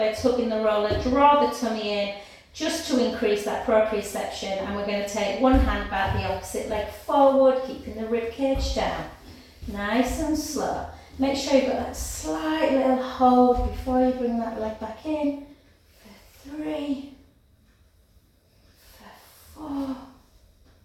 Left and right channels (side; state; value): both; identical; correlation 1.00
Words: hook in the roller, draw the tummy in, just to increase that proprioception. And we're going to take one hand back, the opposite leg forward, keeping the rib cage down. Nice and slow. Make sure you've got that slight little hold before you bring that leg back in. For 3. 4,